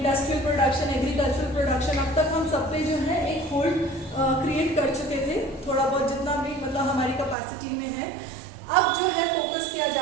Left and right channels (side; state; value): left; drops out; at 7.4 s